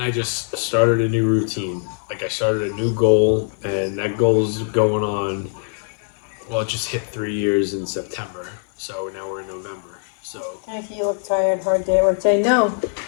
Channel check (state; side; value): silent; right; 65 dB below the other